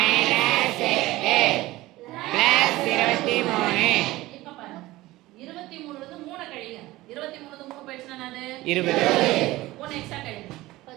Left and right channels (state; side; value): quieter; left; 18.2 dB